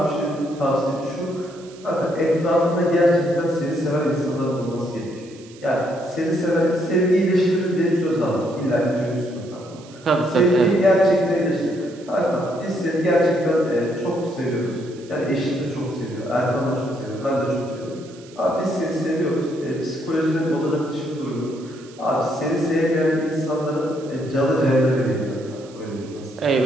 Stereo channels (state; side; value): noise; right; hiss, 24 dB below the sound